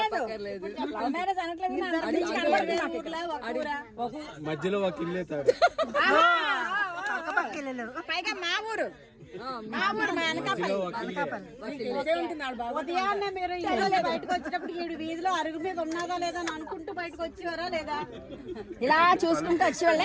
లవ్ మ్యారేజ్ అనట్లేదు. మధ్యలో ఒక ఇల్లు అవుతాడు. పైగా మా ఊరు మా అనకాపల్లి. ఉదయాన్నే మీరు ఇంట్లో బయటకు వచ్చేటప్పుడు ఈడు వీధిలో అరుగు మీద ఉన్నదా లేదా అని అనుకుంటూ బయటకు వచ్చేవారా లేదా? ఇలా చూసుకుంటూ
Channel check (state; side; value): identical; both; correlation 1.00